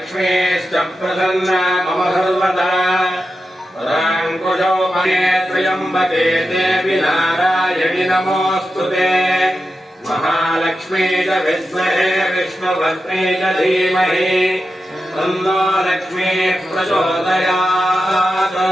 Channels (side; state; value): both; normal; correlation 0.90